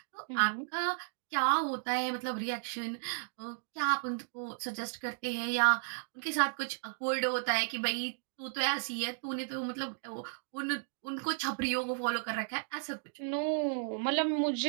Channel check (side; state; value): left; silent; digital silence